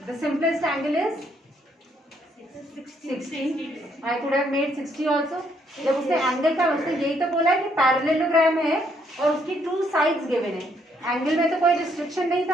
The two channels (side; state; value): both; normal; correlation 0.71